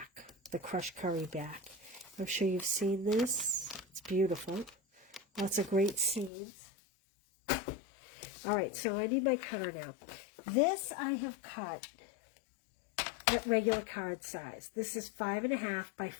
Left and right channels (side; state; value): right; drops out; at 6.3 s